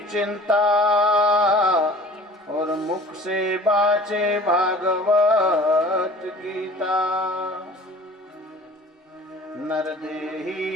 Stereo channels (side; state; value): both; normal; correlation 0.46